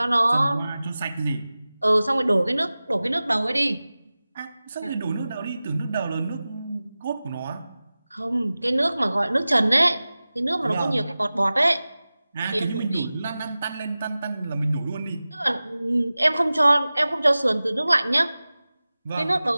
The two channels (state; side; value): inverted; both; correlation -0.97